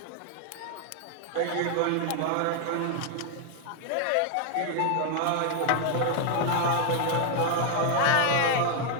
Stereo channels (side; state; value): both; different; correlation 0.00